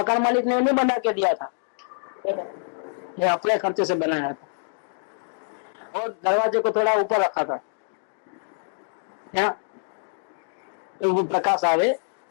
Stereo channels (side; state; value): right; silent; digital silence